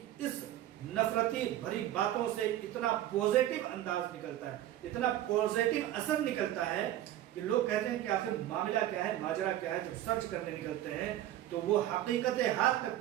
اس نفرتی بھری باتوں سے اتنا پوزیٹو انداز نکلتا ہے، اتنا پوزیٹو اثر نکلتا ہے کہ لوگ کہتے ہیں کہ آخر معاملہ کیا ہے، ماجرا کیا ہے۔ جب سرچ کرنے نکلتے ہیں تو وہ حقیقت حال تک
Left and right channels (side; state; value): left; quieter; 13.0 dB